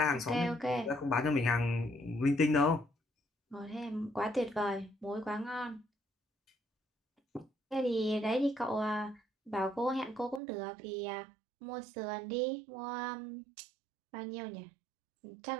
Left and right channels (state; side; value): drops out; left; at 10.4 s